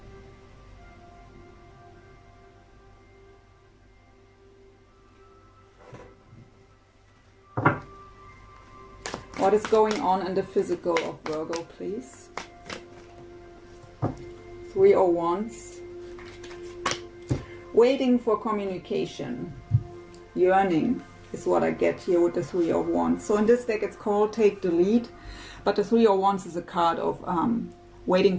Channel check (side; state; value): both; identical; correlation 1.00